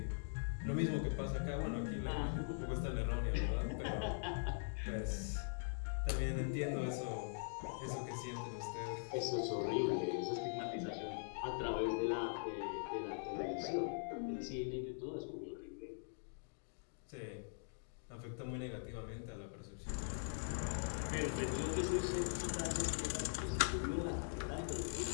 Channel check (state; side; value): silent; right; digital silence